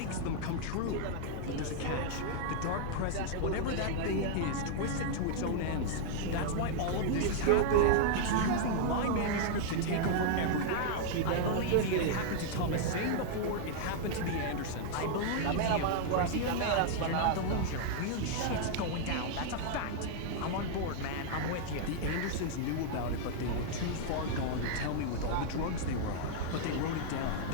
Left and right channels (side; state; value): both; different; correlation -0.01